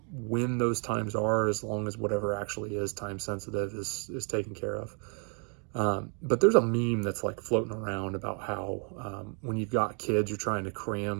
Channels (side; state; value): left; quieter; 39.6 dB